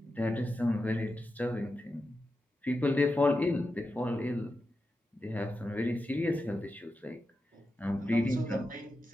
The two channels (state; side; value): normal; both; correlation 0.90